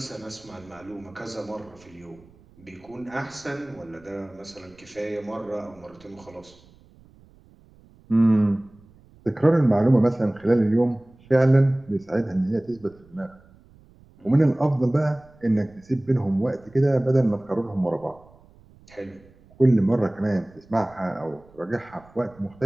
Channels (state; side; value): noise; right; rumble, 27 dB below the sound